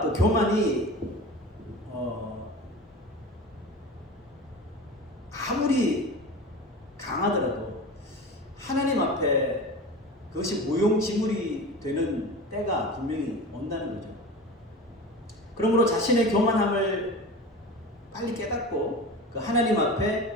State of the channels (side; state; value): both; normal; correlation 0.33